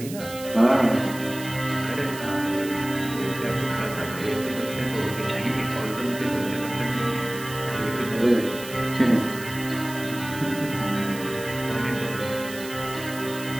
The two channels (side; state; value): right; noise; hiss, 13 dB below the sound